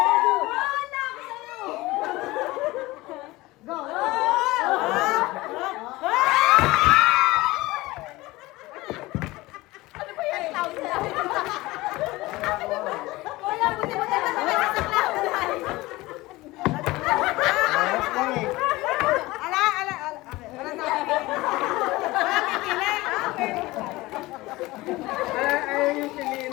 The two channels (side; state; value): right; quieter; 20.0 dB